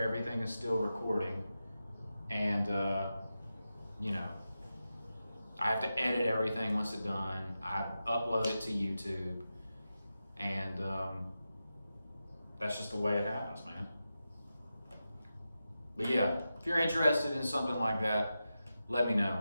everything is still recording, and you know, I have to edit everything once it's done. I upload it to YouTube, and that's just the way it happens, man. But yeah, if you're interested in something like that, let me know.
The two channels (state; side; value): inverted; both; correlation -0.91